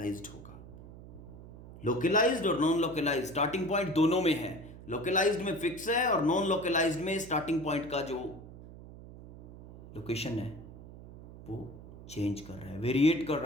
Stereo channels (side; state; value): right; noise; hum, 16 dB below the sound